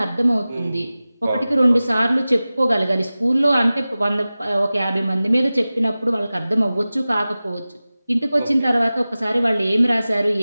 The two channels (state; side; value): inverted; both; correlation -0.97